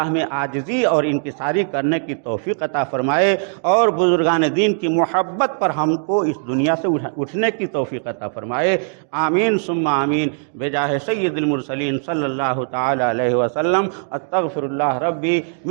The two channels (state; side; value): silent; left; 61 dB below the other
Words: میں عاجزی اور انکساری کرنے کی توفیق عطا فرمائے، اور بزرگان دین کی محبت پر ہم کو اس دنیا سے اٹھنے کی توفیق عطا فرمائے۔ آمین ثم آمین بجاہ سید المرسلین صلی اللہ تعالی علیہ وسلم۔ استغفر اللہ ربی